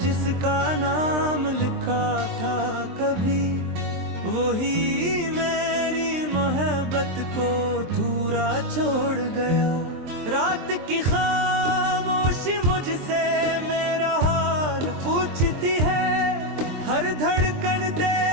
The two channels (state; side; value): late; left; 23 ms